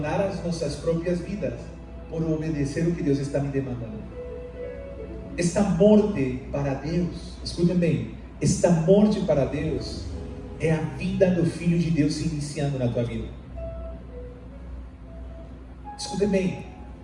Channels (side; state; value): both; identical; correlation 1.00